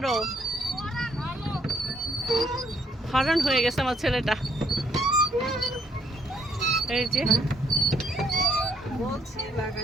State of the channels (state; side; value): normal; both; correlation 0.69